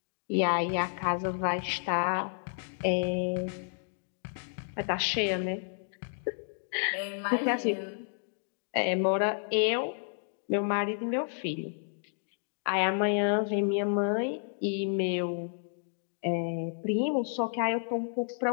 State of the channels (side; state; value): right; silent; digital silence